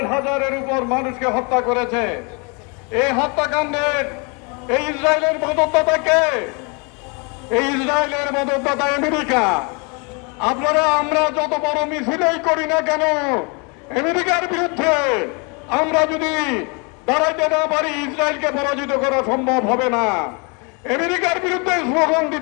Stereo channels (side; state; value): right; quieter; 32.6 dB